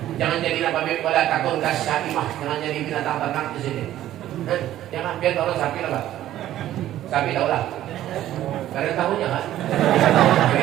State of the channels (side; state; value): left; quieter; 13.1 dB